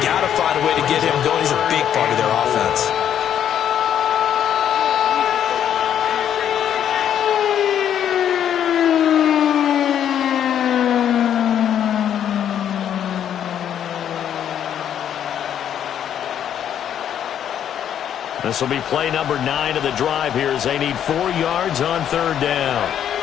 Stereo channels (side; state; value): right; quieter; 9.7 dB